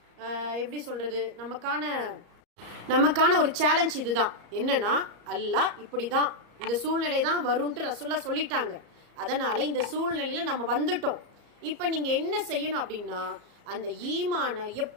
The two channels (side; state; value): left; late; 34 ms